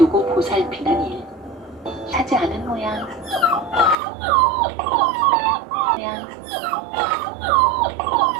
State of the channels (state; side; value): drops out; left; at 4.0 s